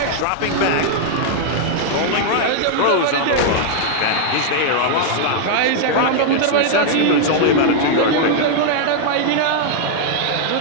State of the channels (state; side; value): different; both; correlation -0.01